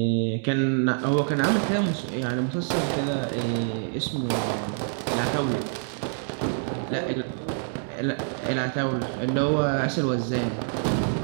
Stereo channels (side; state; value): left; silent; 61 dB below the other